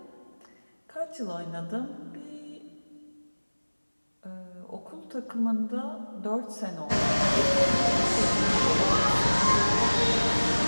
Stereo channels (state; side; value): inverted; both; correlation -1.00